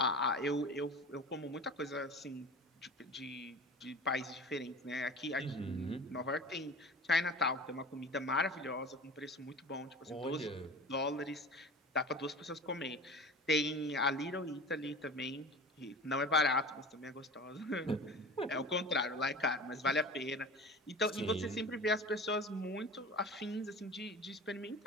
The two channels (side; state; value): both; normal; correlation 0.36